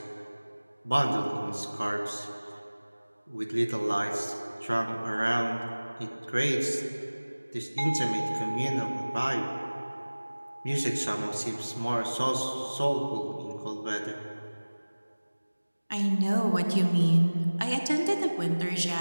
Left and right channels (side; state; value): both; inverted; correlation -1.00